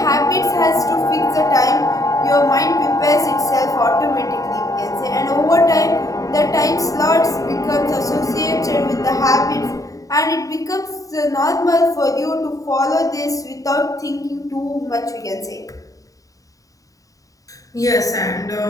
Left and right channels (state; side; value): late; right; 0.16 ms